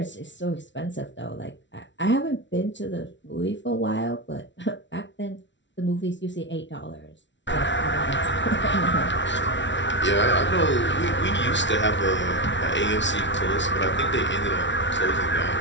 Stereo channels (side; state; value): right; late; 0.54 ms